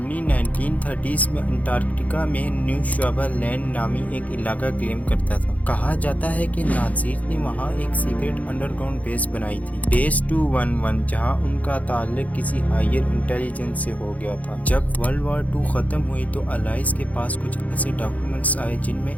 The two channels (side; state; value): right; late; 0.072 ms